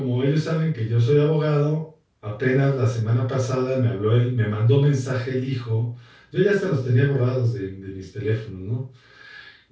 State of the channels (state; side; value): identical; both; correlation 1.00